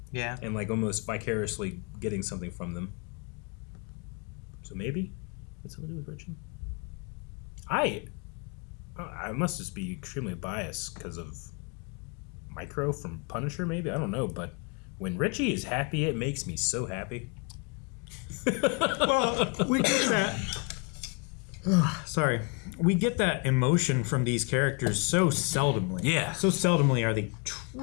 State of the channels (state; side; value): quieter; right; 33.2 dB